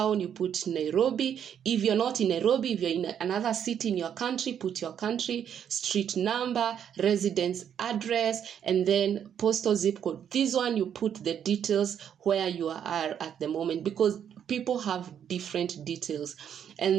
you put Nairobi. If you're not in Nairobi, if you're in another city in your country, put your country, street number, residence address, and then postal zip code. This one you put the details where you are at the moment, because people have different details.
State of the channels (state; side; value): quieter; left; 8.8 dB